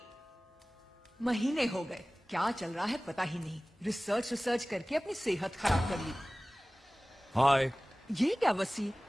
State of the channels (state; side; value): normal; both; correlation 0.98